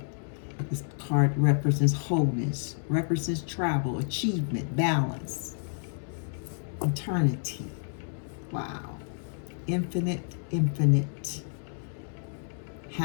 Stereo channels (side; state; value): right; silent; 58 dB below the other